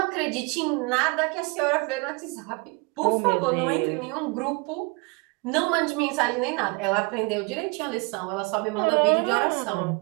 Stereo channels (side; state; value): left; quieter; 29.3 dB